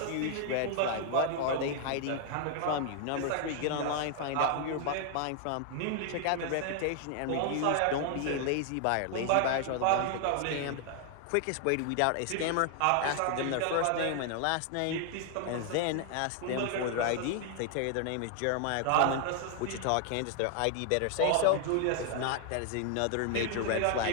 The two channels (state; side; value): different; both; correlation 0.00